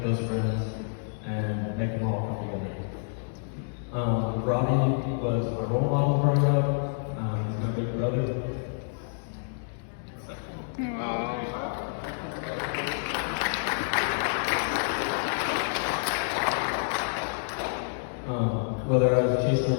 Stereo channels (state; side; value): silent; right; digital silence